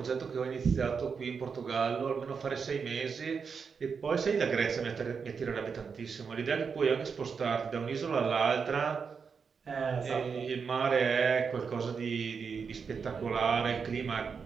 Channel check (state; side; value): quieter; left; 5.8 dB